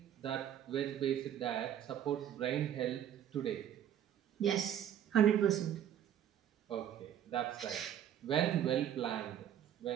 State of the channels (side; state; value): left; quieter; 10.2 dB